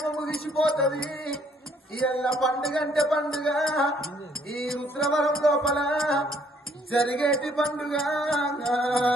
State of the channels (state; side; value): normal; both; correlation 0.65